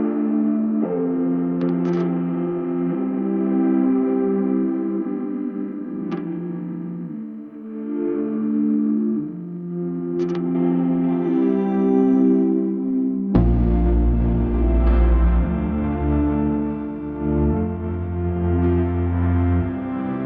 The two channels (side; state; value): both; identical; correlation 1.00